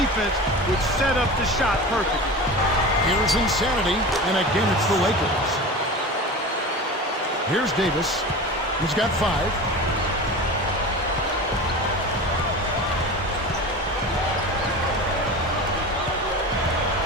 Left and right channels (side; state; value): both; normal; correlation 0.32